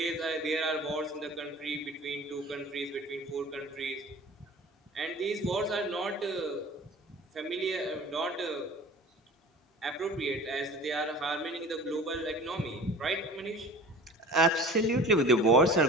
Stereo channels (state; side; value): normal; both; correlation 0.42